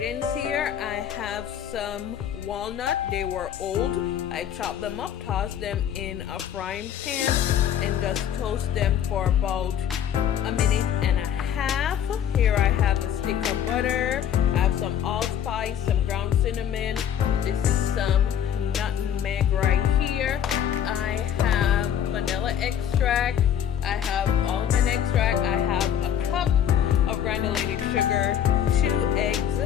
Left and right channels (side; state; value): right; quieter; 9.6 dB